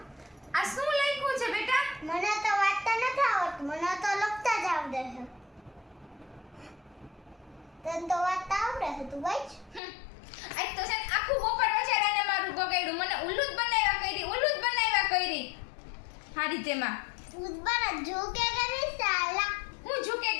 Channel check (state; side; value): drops out; right; at 9.8 s